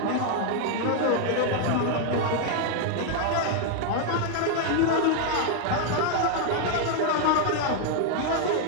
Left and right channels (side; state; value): both; different; correlation 0.00